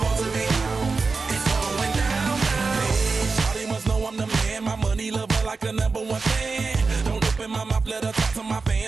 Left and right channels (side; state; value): left; quieter; 4.3 dB